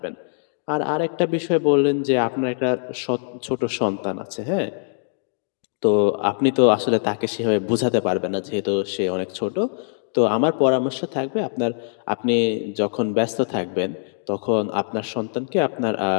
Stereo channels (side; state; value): right; silent; digital silence